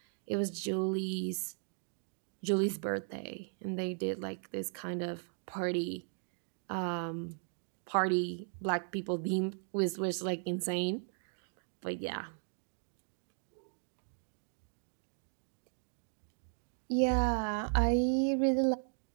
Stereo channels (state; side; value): silent; left; 53 dB below the other